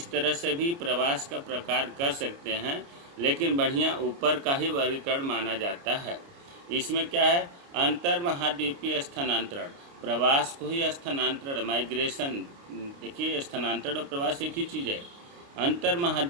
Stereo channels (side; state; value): left; late; 29 ms